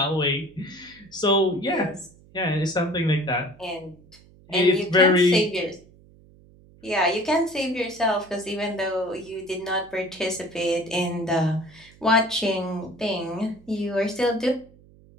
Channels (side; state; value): right; noise; hum, 26 dB below the sound